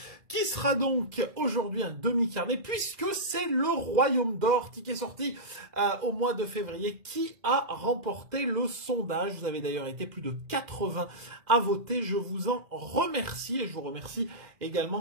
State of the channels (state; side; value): late; left; 2.0 ms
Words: qui sera donc aujourd'hui un demi-carnet puisque c'est le Royaume d'Or, ticket sorti au mois de février, qui a remporté le sondage. Vous avez d'ailleurs été plus de 80 à voter, je vous en remercie et je vous remercie